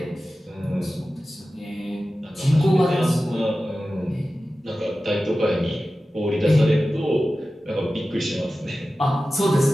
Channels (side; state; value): both; normal; correlation 0.95